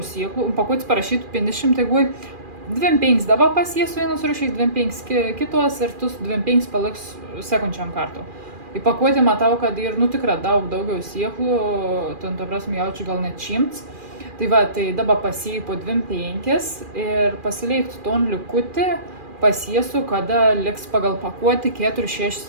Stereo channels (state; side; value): late; left; 2.4 ms